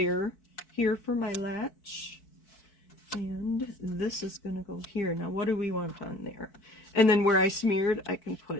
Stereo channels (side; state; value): right; late; 4.6 ms